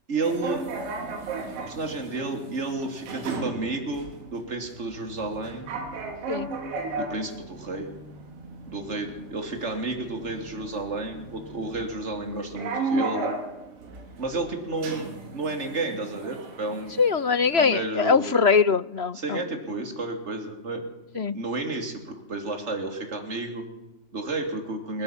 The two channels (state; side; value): late; left; 3.0 ms